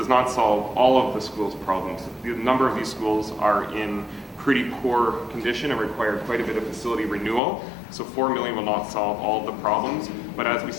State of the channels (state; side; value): drops out; right; at 7.4 s